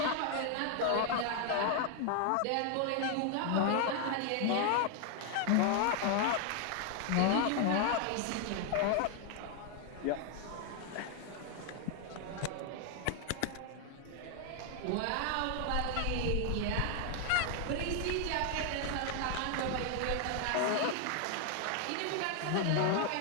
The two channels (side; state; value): both; different; correlation 0.00